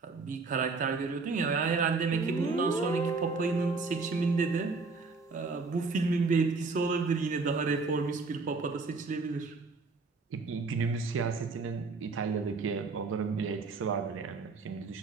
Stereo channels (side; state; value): left; quieter; 4.2 dB